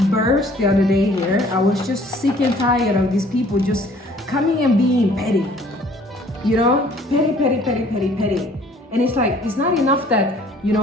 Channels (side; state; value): both; normal; correlation 0.55